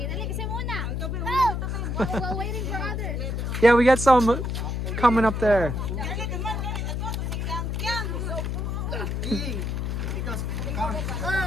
dali kasi muna. While waiting for others. Yeah, we got some coming up there.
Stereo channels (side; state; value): left; noise; hum, 1 dB below the sound